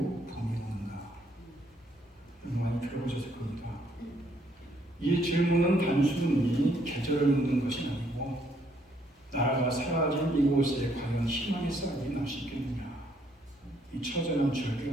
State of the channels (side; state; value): both; normal; correlation 0.69